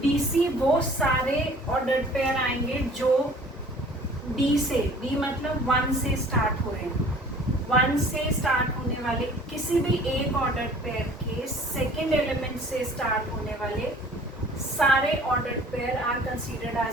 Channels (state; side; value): normal; both; correlation 0.49